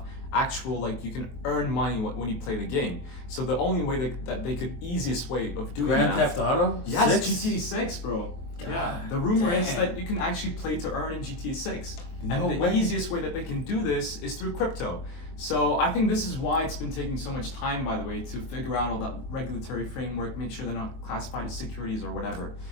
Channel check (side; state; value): right; late; 23 ms